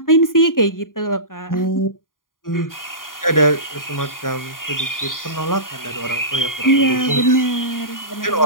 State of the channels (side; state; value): right; late; 0.90 ms